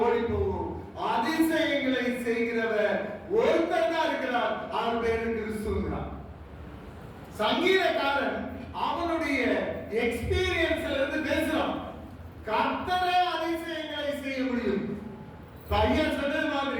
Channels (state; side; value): identical; both; correlation 1.00